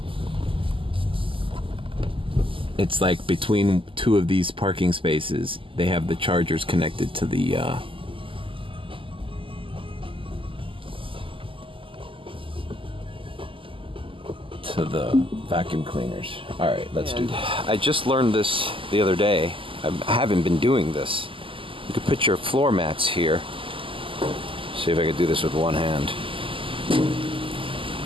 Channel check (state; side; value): late; left; 0.25 ms